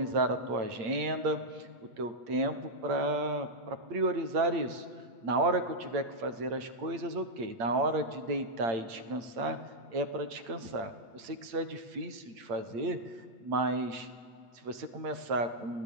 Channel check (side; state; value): left; late; 8.8 ms